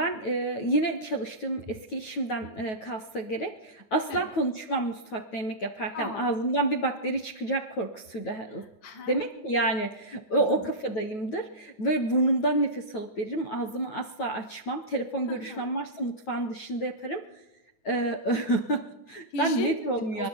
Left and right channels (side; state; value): right; late; 9.2 ms